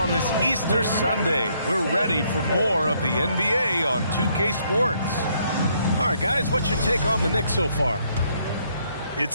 this Easter Sunday. We're ready for more of the NBA on 2K Sports. All right, guys, what's your take on the Knicks so far? It's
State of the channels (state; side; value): inverted; both; correlation -0.70